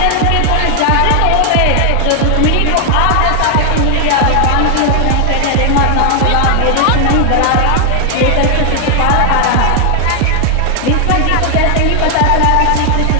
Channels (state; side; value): different; both; correlation 0.00